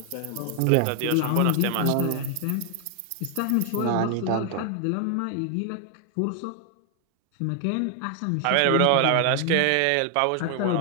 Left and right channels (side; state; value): both; different; correlation 0.00